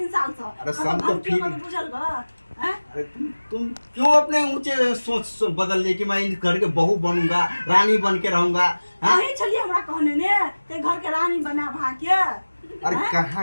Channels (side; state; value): both; inverted; correlation -1.00